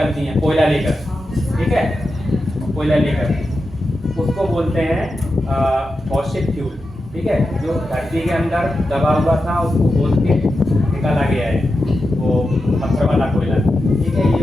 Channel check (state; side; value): normal; both; correlation 0.90